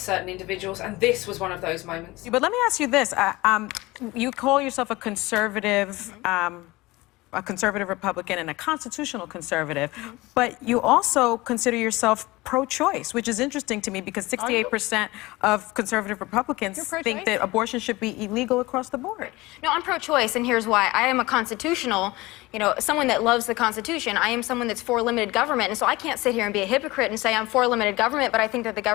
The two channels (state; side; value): quieter; right; 20.9 dB